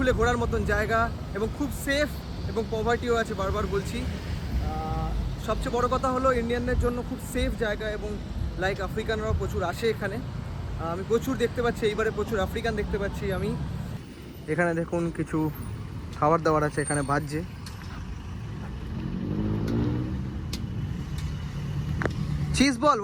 ঘোরার মতন জায়গা, এবং খুব সেফ, এবং পভার্টিও আছে, বারবার বলছি। সবচেয়ে বড় কথা হলো ইন্ডিয়ানদের জন্য খুব সেফ জায়গা, এবং লাইক আফ্রিকানরাও প্রচুর আসে এখানে, আমি প্রচুর দেখতে পাচ্ছি, এইবারে প্রচুর আফ্রিকান দেখতে পাচ্ছি আমি। এখানে দেখুন কিছু খাবার দাবার আছে, এখানে ভাজছে। Cheese ball,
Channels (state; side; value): identical; both; correlation 1.00